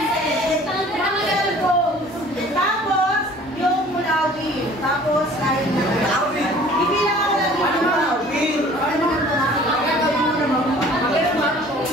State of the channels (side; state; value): both; normal; correlation 0.50